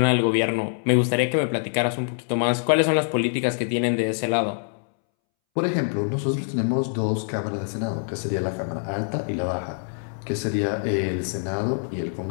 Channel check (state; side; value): silent; right; 62 dB below the other